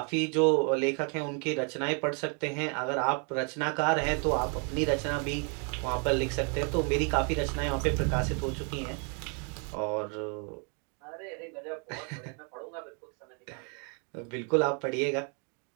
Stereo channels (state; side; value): quieter; left; 37.9 dB